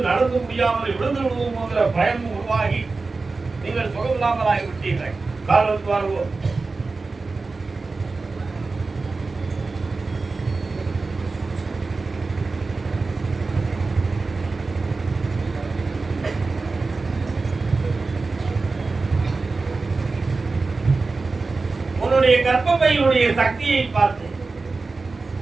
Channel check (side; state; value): left; quieter; 3.9 dB